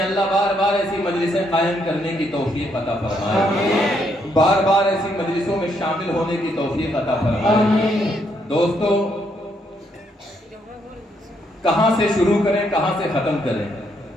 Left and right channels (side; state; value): both; normal; correlation 0.74